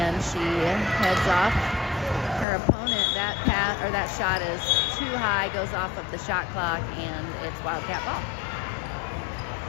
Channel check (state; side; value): drops out; right; at 2.5 s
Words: she heads off. Her opponent, that shot is too high, goes off of the shot clock, and it's Wildcat ball.